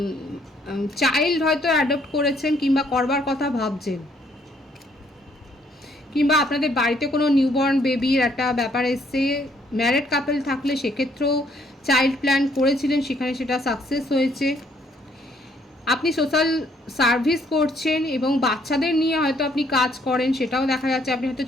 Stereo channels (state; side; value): normal; both; correlation 0.67